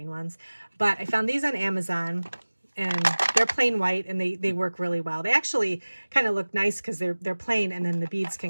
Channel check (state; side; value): inverted; both; correlation -1.00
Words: ones, but I found these on Amazon. And they're plain white, and they work really well. They actually kind of look nice because they're plain, and then the beads